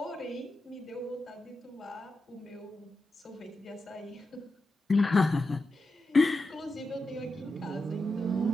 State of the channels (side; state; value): both; normal; correlation 0.89